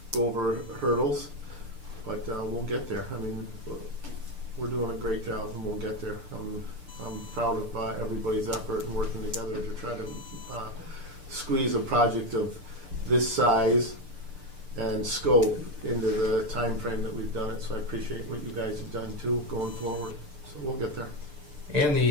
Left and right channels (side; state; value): left; late; 6.8 ms